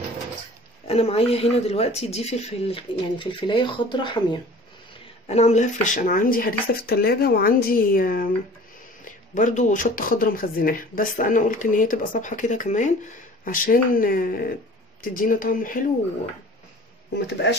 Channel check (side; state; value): both; normal; correlation 0.45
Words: انا معايا هنا دلوقتي دي فلفل، يعني فلفلايه خضراء حاميه، انا عاملاها فريش. انا عندي هريسه في التلاجة، وعندي برضو شطه خضراء مخزناها، بس انا قلت ان هي تبقى صبحه كده كمان عشان تدينا طعم حلو، وما